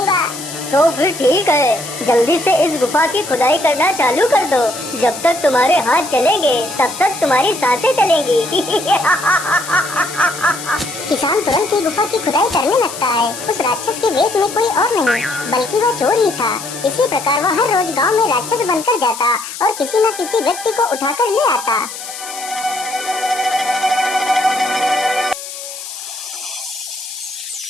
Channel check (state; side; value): noise; left; hiss, 10 dB below the sound